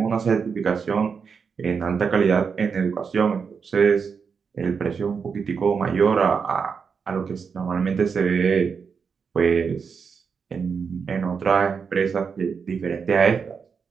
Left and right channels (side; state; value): left; quieter; 5.9 dB